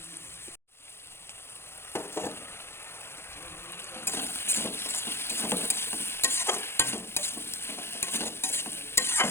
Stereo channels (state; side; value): late; right; 0.12 ms